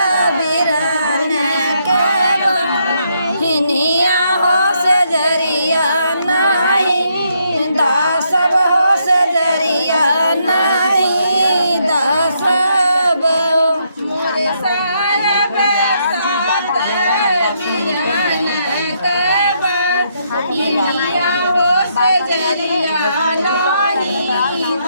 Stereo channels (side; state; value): both; inverted; correlation -0.75